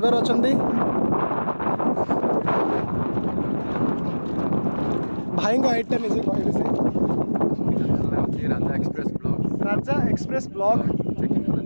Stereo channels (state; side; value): inverted; both; correlation -1.00